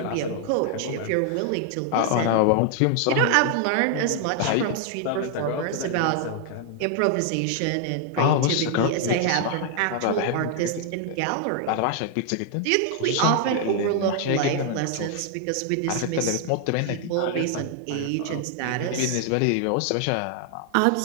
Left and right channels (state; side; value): different; both; correlation 0.00